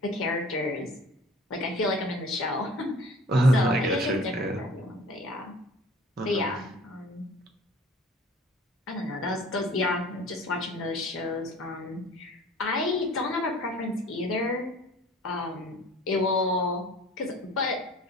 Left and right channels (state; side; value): normal; both; correlation 0.47